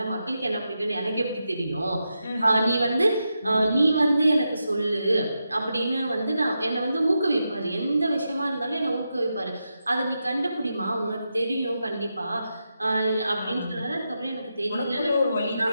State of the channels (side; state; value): both; inverted; correlation -0.87